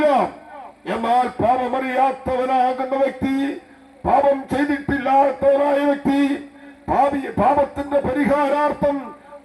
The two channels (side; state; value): both; identical; correlation 1.00